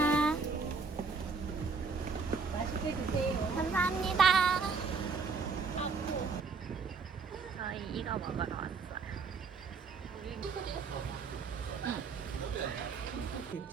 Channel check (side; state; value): left; quieter; 4.9 dB